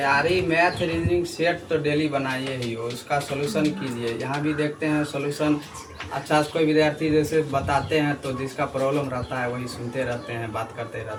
मैथ रीजनिंग सेट तो डेली बनाइए ही हो, उसका सोल्यूशन कीजिए। यहाँ भी देखते हैं सोल्यूशन अच्छा से कोई विद्यार्थी जैसे बताते हैं तो जिसका प्रॉब्लम रहता है वही सुनते रहते हैं, बात करते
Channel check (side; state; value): both; identical; correlation 1.00